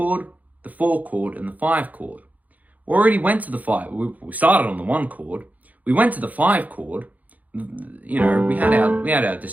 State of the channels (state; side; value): late; left; 0.077 ms